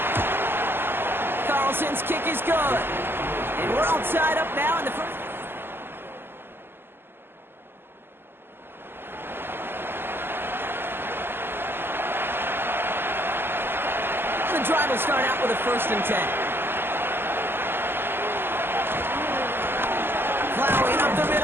Carlson's kick is good. And we're all tied up now in the 1st. The drive will start out with a 1st and 10. Plowing up the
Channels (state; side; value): late; left; 0.10 ms